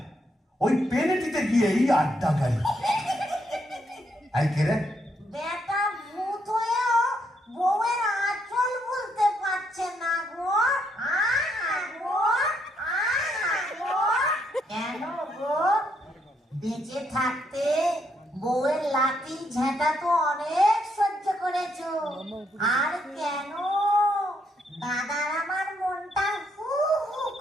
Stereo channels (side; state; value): both; normal; correlation 0.75